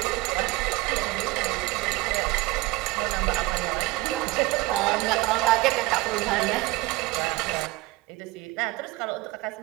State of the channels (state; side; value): quieter; left; 20.9 dB